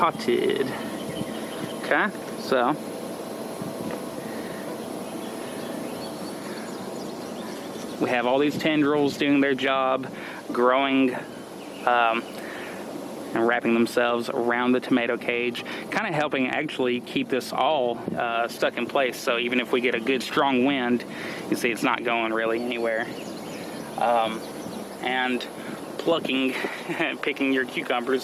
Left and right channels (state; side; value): identical; both; correlation 1.00